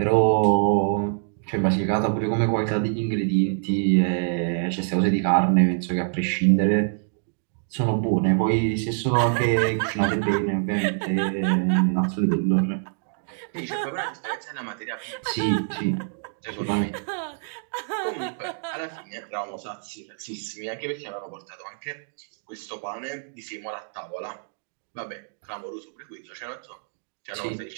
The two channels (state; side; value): silent; left; digital silence